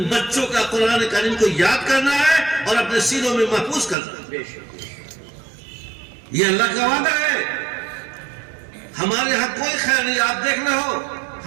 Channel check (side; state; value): left; drops out; at 4.0 s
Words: بچوں کا قرآن کریم کو یاد کرنا ہے اور اپنے سینوں میں محفوظ کرنا ہے۔ یہ اللہ کا وعدہ ہے۔ ہمارے ہاں کوئی خیر نہیں. آپ دیکھ رہے ہو